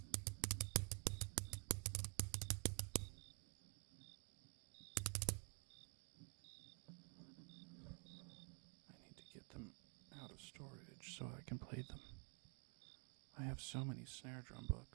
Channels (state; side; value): quieter; left; 37.7 dB